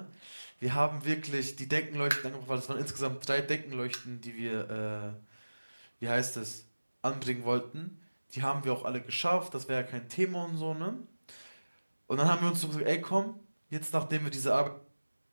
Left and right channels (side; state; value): both; inverted; correlation -1.00